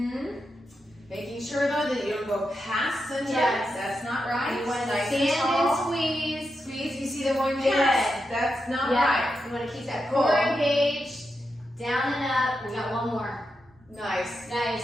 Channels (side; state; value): both; normal; correlation 0.87